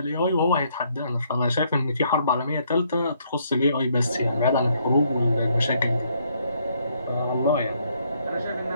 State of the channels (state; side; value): inverted; both; correlation -0.70